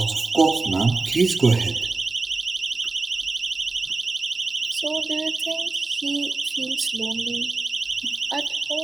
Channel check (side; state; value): left; quieter; 3.8 dB